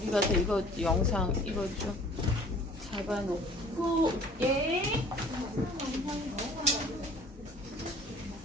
가서 이거 영상 이거 좀 잡아놓고 예.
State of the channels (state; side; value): normal; both; correlation 0.51